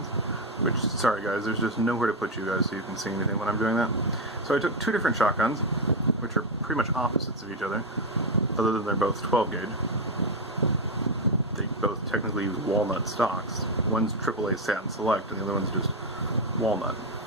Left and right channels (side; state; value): both; normal; correlation 0.06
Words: which, sorry guys, there's just nowhere to put you guys so you can see anything when I'm doing that. So I took two different shotguns, which are pretty much opposites of each other, other than they're both 12 gauge. They both technically use walnut stocks. One's AAA Satin Select and the other one's just walnut.